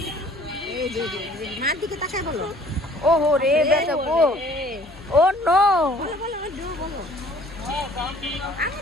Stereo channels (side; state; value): both; normal; correlation 0.54